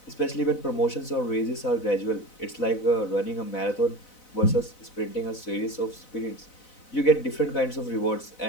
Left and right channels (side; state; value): right; late; 4.0 ms